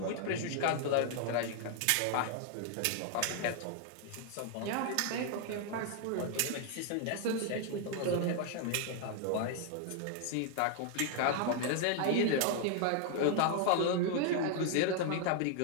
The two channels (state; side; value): different; both; correlation 0.00